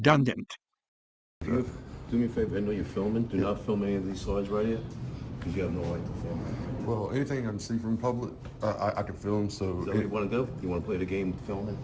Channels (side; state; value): both; identical; correlation 1.00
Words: Do me a favor, I know you're filming. Do not film any of these slides right here, because you have no right to film. Well, anything I can see from public, I can film, so... Is that what you want to do? You want to play the game of filming?